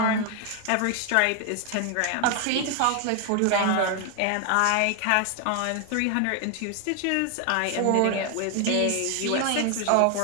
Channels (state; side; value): different; both; correlation 0.01